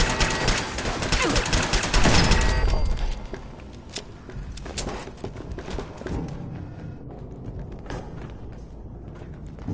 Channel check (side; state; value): both; identical; correlation 1.00